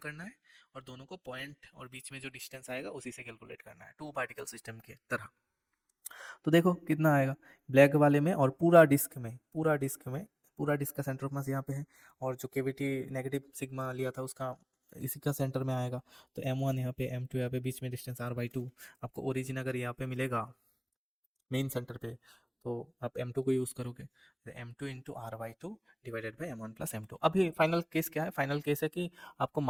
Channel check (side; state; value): both; identical; correlation 1.00